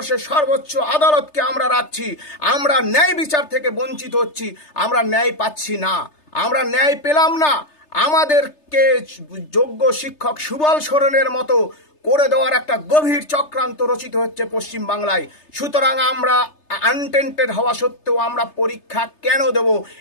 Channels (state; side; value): late; right; 3.3 ms